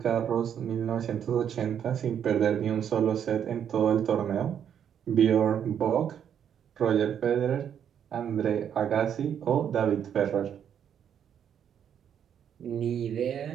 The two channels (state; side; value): quieter; left; 8.8 dB